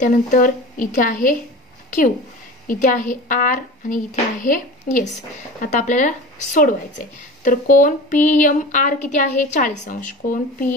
इथे आहे Q, इथे आहे R आणि इथे आहे S. आता आपल्याला सोडवायचंय. तर कोन PMR किती आहे, 40 अंश. कोन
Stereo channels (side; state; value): both; normal; correlation 0.35